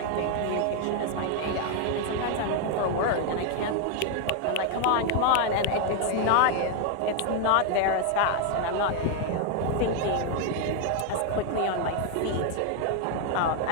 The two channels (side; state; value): both; different; correlation 0.00